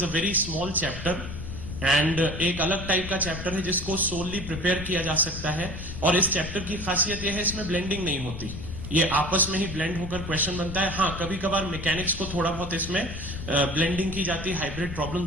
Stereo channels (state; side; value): noise; left; rumble, 8 dB below the sound